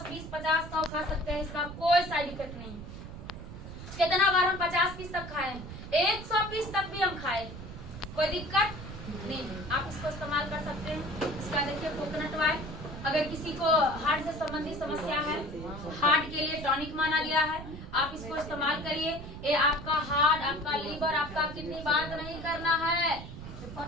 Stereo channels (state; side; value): noise; right; rumble, 11 dB below the sound